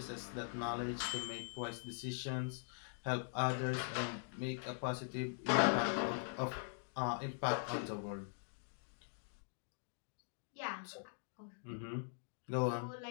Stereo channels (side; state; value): right; silent; digital silence